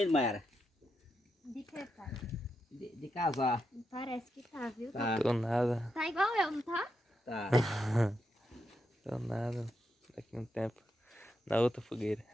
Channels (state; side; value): normal; both; correlation 0.84